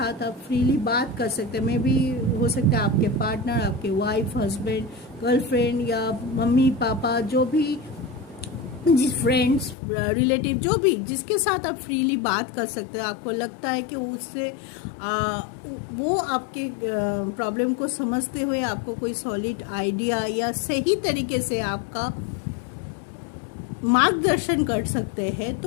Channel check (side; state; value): right; drops out; at 9.8 s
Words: आप फ्रीली बात कर सकते हैं, मे भी हो सकता है आपके पार्टनर, आपके वाइफ, हस्बैंड, गर्लफ्रेंड या मम्मी पापा, जो भी जिस फ्रेंड्स, रिलेटिव, जो भी जिसके साथ आप फ्रीली बात कर सकते हैं, आपको लगता है कि उससे वो आपके प्रॉब्लम को समझते हुए आपको कोई सॉलिड आइडिया या सही तरीके से आपका मार्गदर्शन कर सकते हैं,